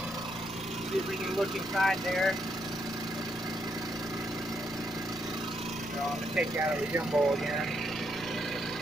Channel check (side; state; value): left; noise; rumble, 19 dB below the sound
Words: See if we can look inside there. So I'm going to take you out of the gimbal again.